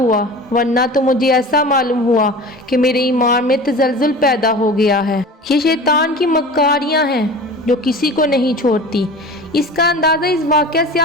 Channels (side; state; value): both; normal; correlation 0.36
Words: ورنہ تو مجھے ایسا معلوم ہوا کہ میرے ایمان میں تزلزل پیدا ہو گیا ہے۔ یہ شیطان کی مکاریاں ہیں جو کسی کو نہیں چھوڑتی۔ اس کا اندازہ اس واقعہ سے